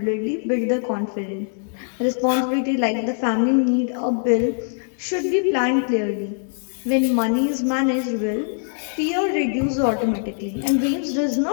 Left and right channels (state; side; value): silent; right; digital silence